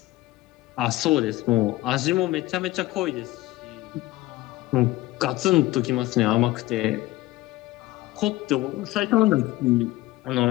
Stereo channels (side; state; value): right; quieter; 17.8 dB